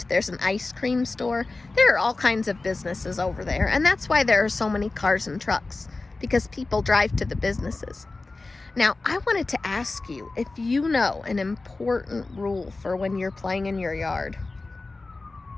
There's an ice cream store. There are all kinds of businesses over there, and that's why there are so many cars and trucks, because people drive to the businesses. Now, I wanted to ask you if you know an important rule for when you're playing in your yard.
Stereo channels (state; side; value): quieter; right; 3.4 dB